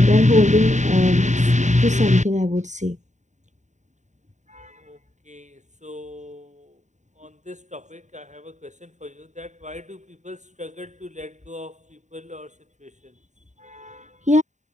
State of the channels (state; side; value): late; left; 0.34 ms